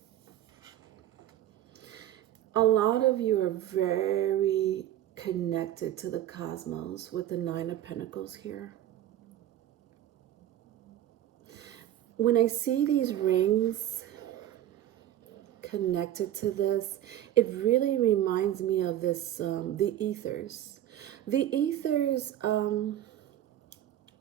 lot of you are very connected to the cosmos with the Nine of Pentacles here. When I see these rings connected to this, it really reminds me of this, the ethers. The ethers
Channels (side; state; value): left; quieter; 12.3 dB